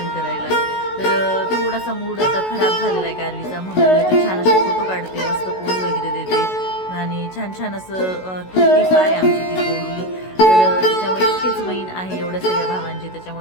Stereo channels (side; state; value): right; late; 16 ms